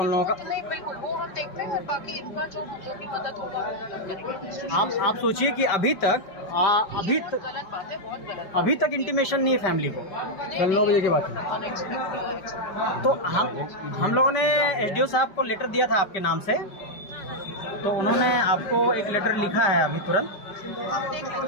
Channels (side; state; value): right; late; 5.0 ms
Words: लोगों का। नहीं बिल्कुल वो हम देखते हैं, बाकी इनका जो भी मदद होगा वो करेंगे। आप सोचिए कि अभी तक गलत बात है, बहुत गलत। अभी तक इंटीमेशन नहीं है फैमिली को। कल 9 बजे के बाद तो हम लोगों ने एसडीओ साहब को लेटर दिया था आपके नाम से, तो उन्होंने आपको एक लेटर लिखा है अभी तुरंत।